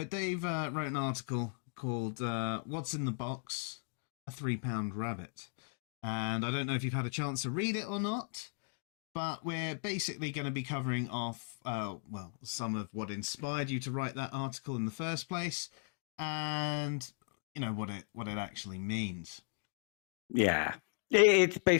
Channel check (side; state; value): right; silent; 53 dB below the other